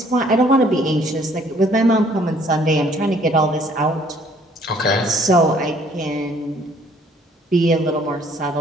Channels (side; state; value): both; normal; correlation 0.60